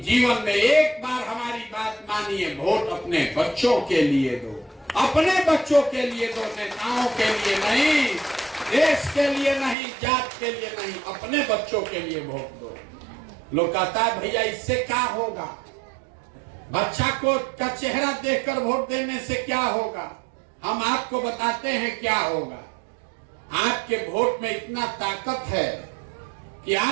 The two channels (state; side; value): drops out; left; at 9.8 s